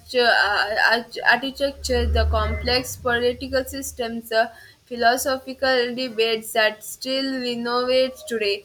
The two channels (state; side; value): identical; both; correlation 1.00